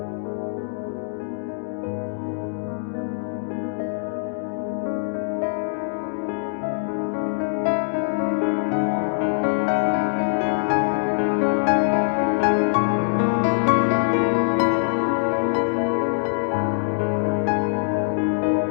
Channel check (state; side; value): silent; right; digital silence